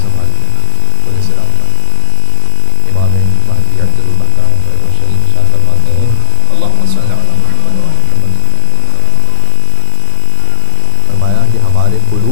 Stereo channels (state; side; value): different; both; correlation 0.00